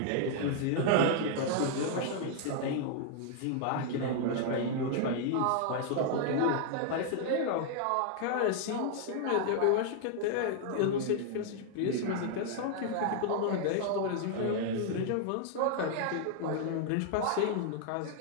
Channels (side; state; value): both; different; correlation 0.00